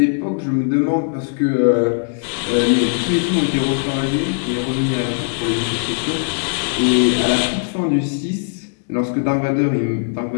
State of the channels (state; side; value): silent; right; digital silence